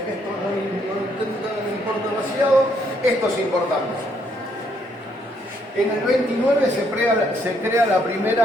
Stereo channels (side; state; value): both; normal; correlation 0.71